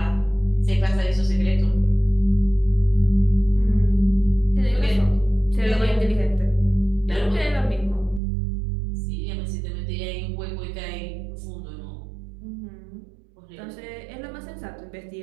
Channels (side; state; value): left; drops out; at 8.2 s